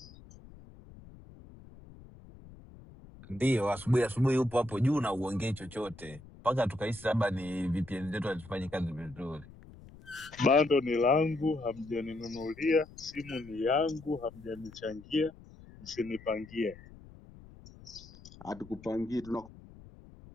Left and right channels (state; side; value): noise; left; rumble, 20 dB below the sound